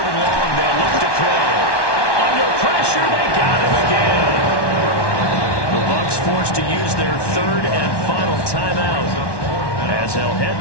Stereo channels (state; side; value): late; right; 1.1 ms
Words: and long, they'll look to throw. Under pressure, they got him again. The Bucs forced to use their 3rd and final timeout, as they'll head